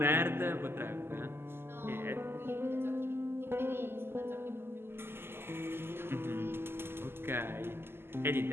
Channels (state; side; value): late; left; 0.11 ms